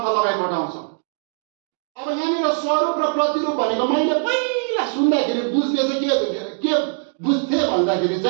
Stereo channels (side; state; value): left; silent; 65 dB below the other